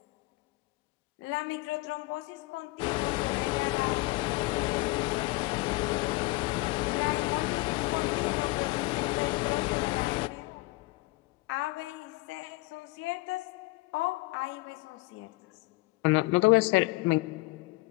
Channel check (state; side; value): quieter; right; 22.1 dB